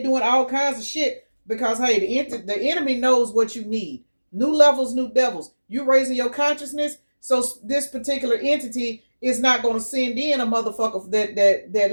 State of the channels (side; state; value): both; inverted; correlation -1.00